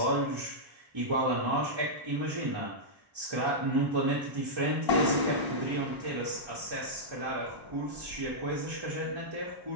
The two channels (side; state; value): left; late; 1.0 ms